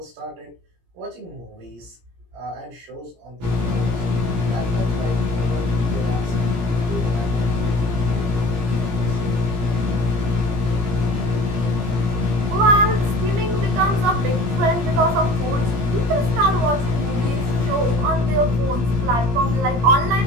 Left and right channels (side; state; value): left; late; 17 ms